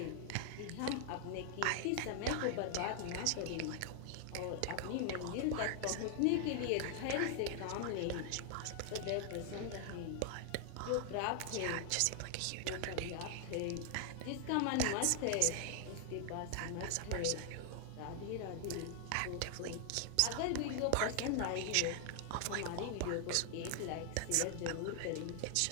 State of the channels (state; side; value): different; both; correlation 0.00